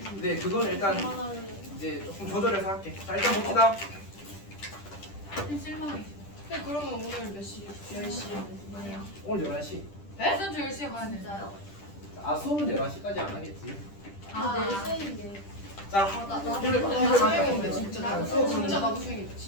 그건 일단 이제 조금 조절해서 할게. 자 일단 봅시다. 실망해. 근데 그러면 오늘 몇 시? 10시 뭐예요? 오늘 11시. 일단 저 10시에 가야 돼. 진짜요? 아 수업은 11시까지 안 하겠지. 아, 수행인데. 자 나 팁을 수행인데 받자. 진짜 자, 나도 수업은 진짜 나도 수행인데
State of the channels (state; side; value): late; right; 10 ms